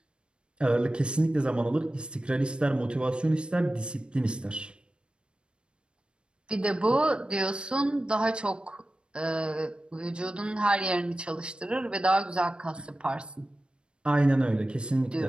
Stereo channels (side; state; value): left; late; 0.055 ms